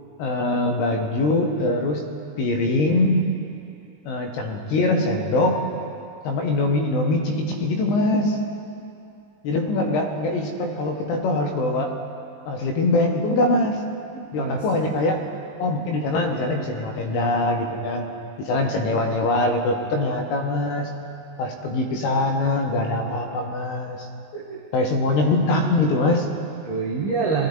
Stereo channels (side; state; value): right; late; 20 ms